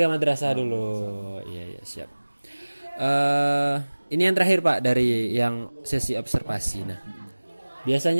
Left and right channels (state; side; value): inverted; both; correlation -1.00